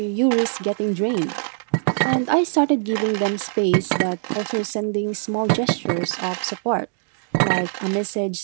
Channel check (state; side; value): silent; left; 64 dB below the other